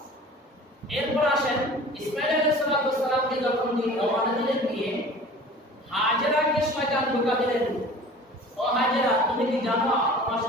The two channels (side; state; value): both; normal; correlation 0.43